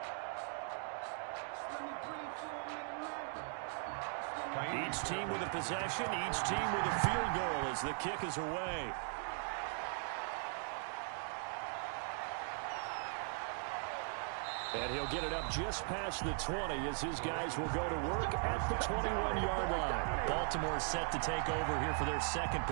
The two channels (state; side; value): silent; left; 52 dB below the other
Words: Each team with a possession, each team with a field goal as the kick is away. And he'll get it up just past the 20 as his guys will go to work at the 21-yard line. Baltimore set to take over here for their second